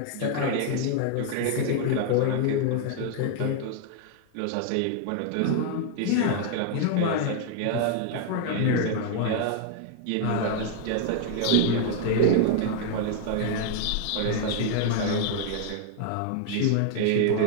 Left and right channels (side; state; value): both; different; correlation 0.00